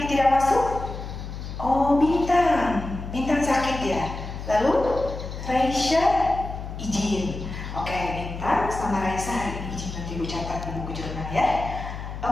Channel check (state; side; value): noise; left; hum, 8 dB below the sound